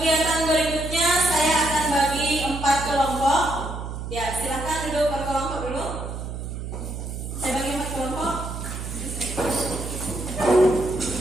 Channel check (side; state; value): right; noise; hum, 7 dB below the sound